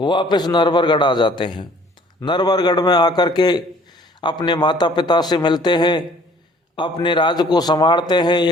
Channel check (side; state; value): both; normal; correlation 0.55